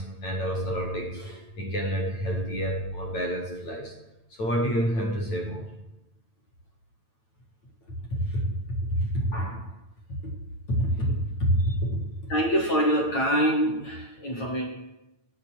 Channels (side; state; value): right; late; 9.0 ms